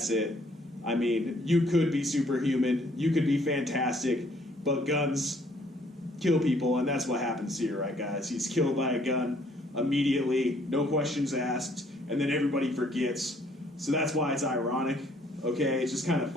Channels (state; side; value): normal; both; correlation 0.63